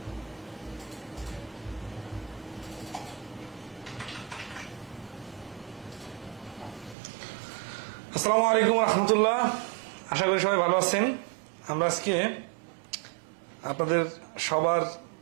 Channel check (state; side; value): drops out; left; at 7.0 s